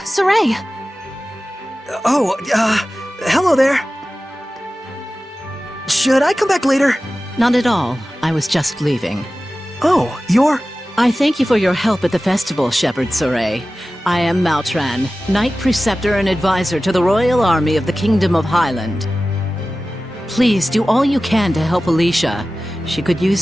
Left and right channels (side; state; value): both; normal; correlation 0.96